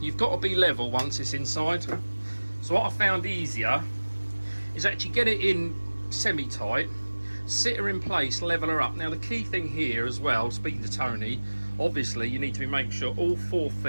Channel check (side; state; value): both; inverted; correlation -1.00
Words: you've got to be level once it's inside. So what I found easier is actually get it in semi-tight, sit her in place, level her up. Now the key thing here as well, speaking to Tony, obviously you need to be making sure all 4